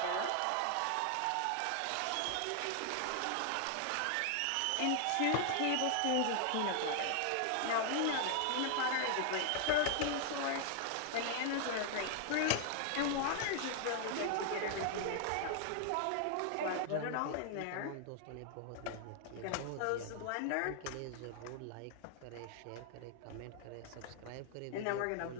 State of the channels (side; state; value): both; different; correlation 0.00